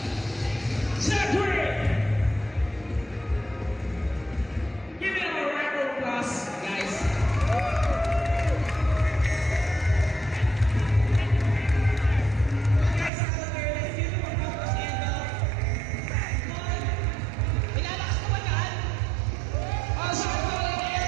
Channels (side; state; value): left; drops out; at 13.1 s